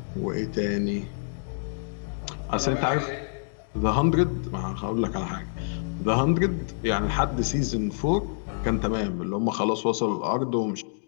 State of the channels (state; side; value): silent; right; digital silence